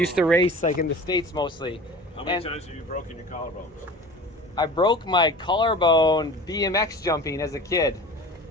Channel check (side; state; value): both; normal; correlation 0.38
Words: to race like in the States mostly. How many times have you broken your collarbones? I broke my collarbone BMX jumping as a kid.